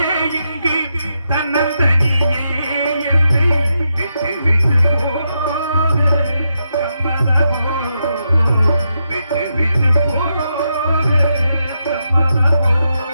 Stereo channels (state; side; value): inverted; both; correlation -0.84